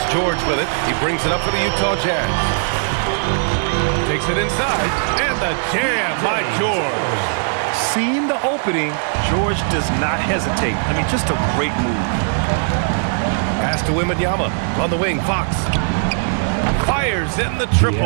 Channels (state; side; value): silent; left; digital silence